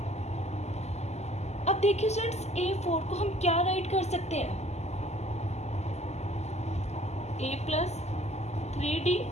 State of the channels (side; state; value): right; late; 0.32 ms